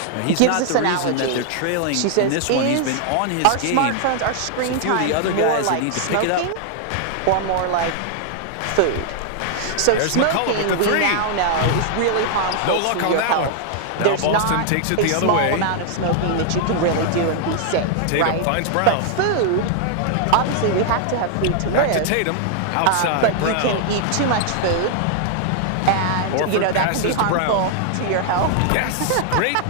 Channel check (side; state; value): both; different; correlation 0.00